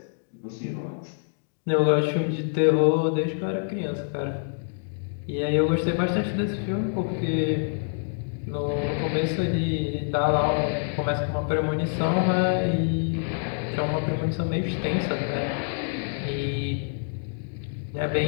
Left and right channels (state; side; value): silent; right; digital silence